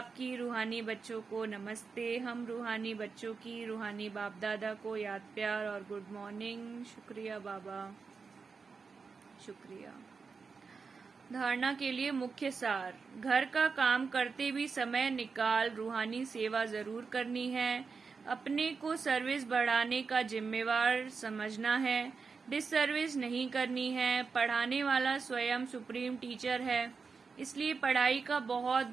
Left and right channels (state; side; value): quieter; left; 5.0 dB